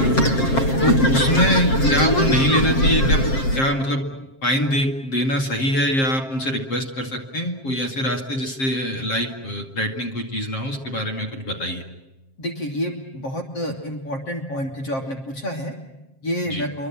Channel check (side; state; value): right; late; 7.5 ms